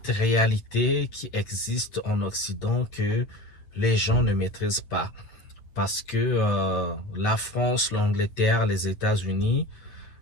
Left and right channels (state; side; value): late; right; 8.9 ms